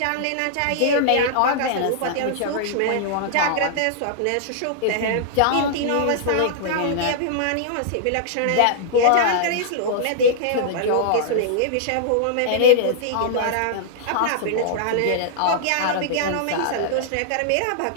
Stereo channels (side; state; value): both; different; correlation -0.01